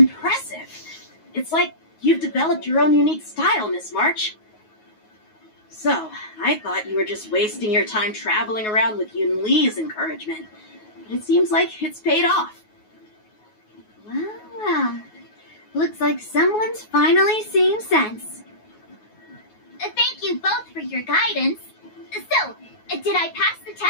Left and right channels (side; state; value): right; late; 9.4 ms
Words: It's like you've developed your own unique style, Miss March. So, I thought you were just wasting your time traveling around with Yun Li's encouragement, but it seems like it's paid off. Well, looks like someone's finally seeing sense. Thank you both for your guidance. So, did I pass the